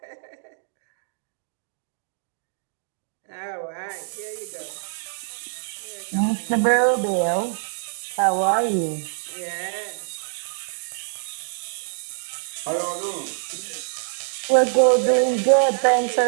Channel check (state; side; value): silent; left; digital silence